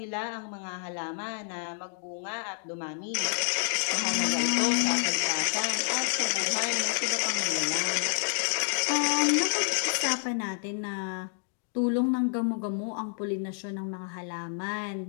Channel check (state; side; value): silent; right; digital silence